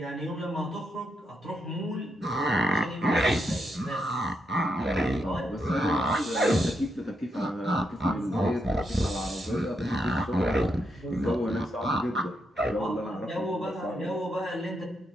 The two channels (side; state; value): both; normal; correlation 0.81